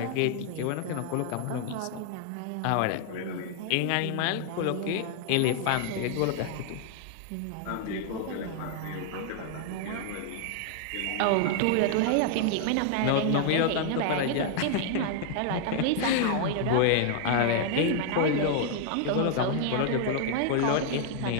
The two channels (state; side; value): different; both; correlation 0.00